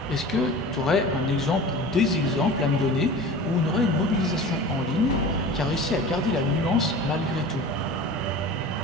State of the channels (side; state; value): both; normal; correlation 0.37